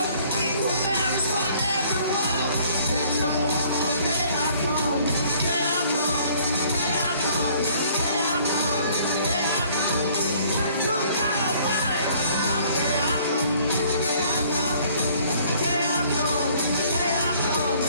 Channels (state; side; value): inverted; both; correlation -0.58